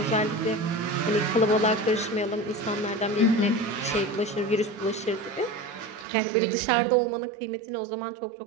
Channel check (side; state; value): left; drops out; at 6.1 s